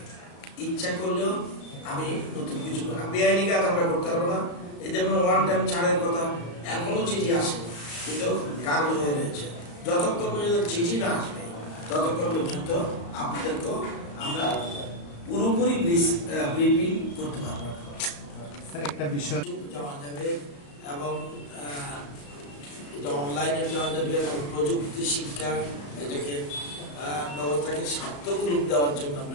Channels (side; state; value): right; late; 35 ms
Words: ইচ্ছা করলেও আমি নতুন কিছু বেআইনি কাজ আমরা করতে পারবো না। এই যেমন 1 টাইম ছাড়ের কথা, এখনো চিঠি আসে, কিন্তু কাগজ হয়ে রয়েছে। যতক্ষণ পর্যন্ত চিঠি না আসবে, ততক্ষণ পর্যন্ত আপনাদেরকে আমরা পুরোপুরি ব্রিফিং করতে পারবো। স্যার, একটা বিষয় জানা যাবে এবং এটা অনলাইনে দেওয়া যাবে এবং প্রযুক্তি শিক্ষা এটাকে ব্যবস্থাকে সার্থক রূপ দেওয়ার জন্য আমরা